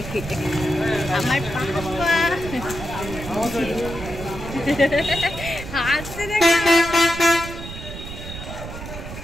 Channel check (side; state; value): right; noise; rumble, 10 dB below the sound